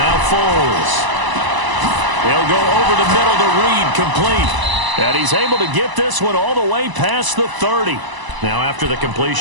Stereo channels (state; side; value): late; left; 1.0 ms